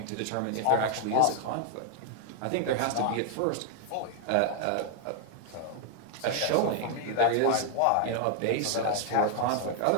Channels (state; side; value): different; both; correlation 0.00